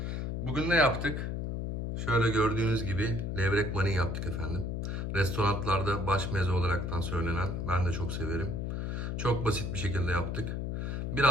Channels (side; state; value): left; noise; hum, 2 dB below the sound